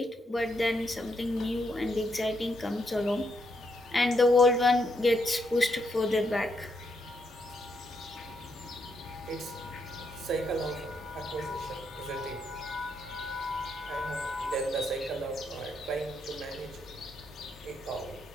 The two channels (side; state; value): both; normal; correlation 0.78